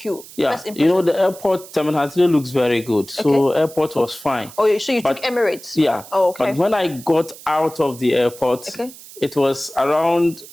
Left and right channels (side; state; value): right; noise; hiss, 18 dB below the sound